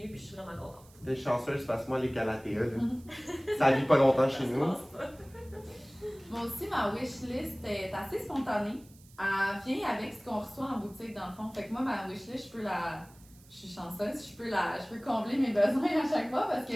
eue, puis je suis vraiment contente. T'es chanceuse parce que moi, les Calathea, ça vit pas longtemps chez nous. Moi aussi, ma wishlist est assez spontanée. Elle vient avec ce qu'on reçoit en boutique, dans le fond. Fait que moi, ma wishlist, je suis chanceuse, je peux combler mes besoins à chaque fois parce que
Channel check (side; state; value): right; noise; hiss, 26 dB below the sound